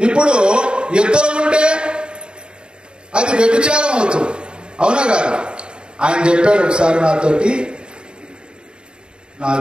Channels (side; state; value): left; late; 0.051 ms